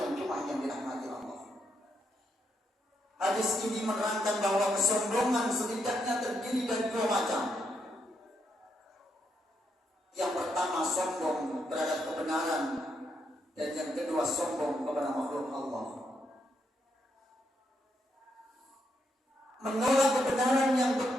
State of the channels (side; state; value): both; normal; correlation 0.78